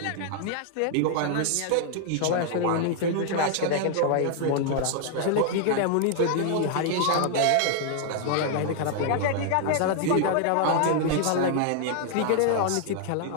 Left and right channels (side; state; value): both; different; correlation 0.00